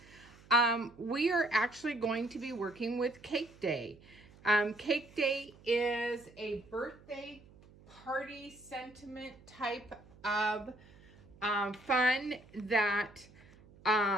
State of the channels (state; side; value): noise; right; hum, 24 dB below the sound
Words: We are actually going to be working with Cake Day. Cake Day is a birthday party sentiment type of fun that